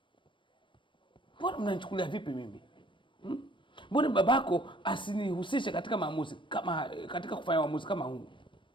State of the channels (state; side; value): late; right; 0.24 ms